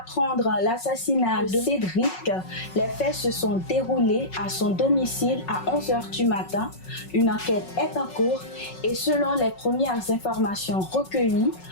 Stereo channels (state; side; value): late; right; 5.4 ms